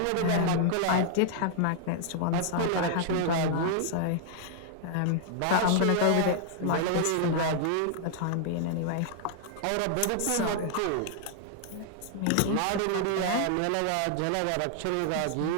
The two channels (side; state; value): both; different; correlation -0.01